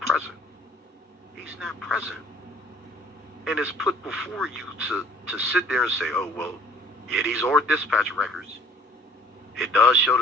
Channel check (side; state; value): both; normal; correlation 0.54